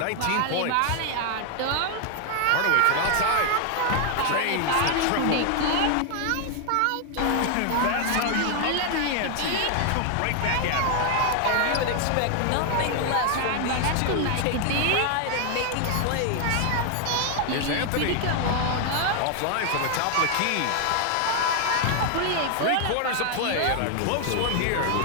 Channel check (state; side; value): different; both; correlation 0.00